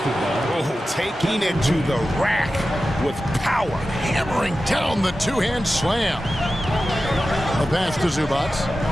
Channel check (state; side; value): normal; both; correlation 0.93